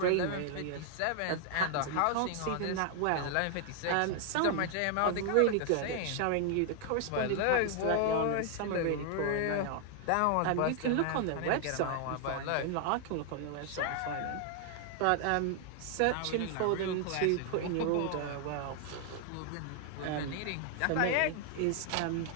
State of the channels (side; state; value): both; different; correlation 0.00